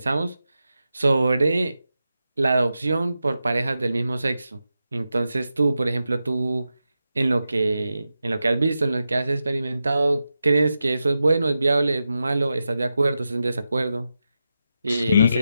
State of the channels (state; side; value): inverted; both; correlation -0.90